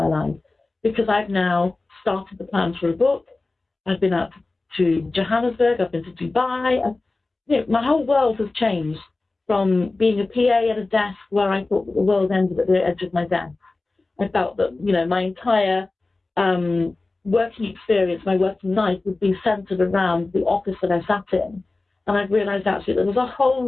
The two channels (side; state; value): right; quieter; 3.3 dB